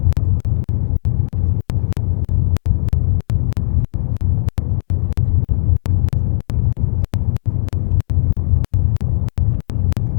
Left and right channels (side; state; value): right; silent; digital silence